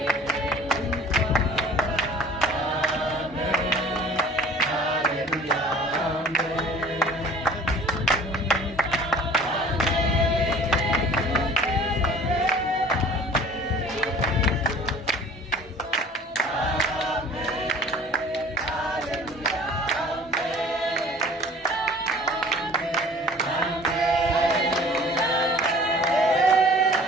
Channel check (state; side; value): normal; both; correlation 0.48